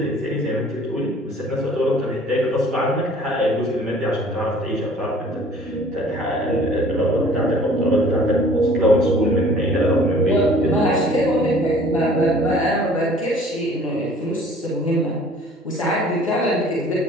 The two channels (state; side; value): normal; both; correlation 0.52